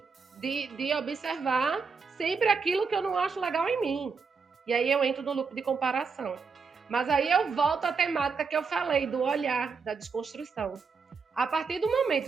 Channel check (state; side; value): quieter; left; 5.2 dB